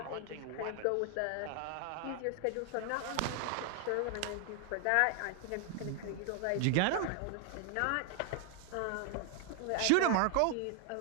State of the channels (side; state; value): both; different; correlation 0.00